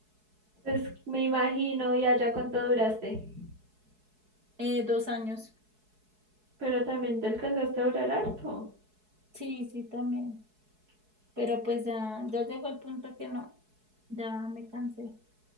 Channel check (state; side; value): late; left; 4.7 ms